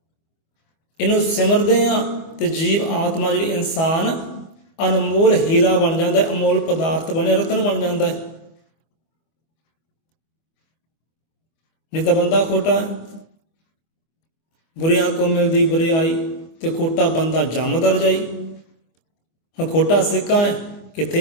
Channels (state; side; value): late; right; 25 ms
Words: ਇਹਨੂੰ ਸਿਮਰਦੇ ਹਾਂ ਤੇ ਜੀਵ ਆਤਮਾ ਜਿਹੜੀ ਇਨਸਾਨ ਅਨਮੋਲ ਹੀਰਾ ਬਣ ਜਾਂਦਾ ਹੈ, ਅਮੋਲ ਪਦਾਰਥ ਬਣੇ, ਰਤਨ ਬਣ ਜਾਂਦਾ ਹੈ। ਨਹੀਂ ਤਾਂ ਬੰਦਾ ਖੋਟਾ। ਬੁਰਿਆਂ ਕੋ ਮਿਲਦੀ ਬੁਰਿਆਈ ਤੇ ਖੋਟਾ ਬੰਦਾ ਜੰਮਦਾ ਰਜਾਈ। ਹੁਣ ਖੋਟਾ ਸਿੱਕਾ ਹੈ, ਕਿੱਥੇ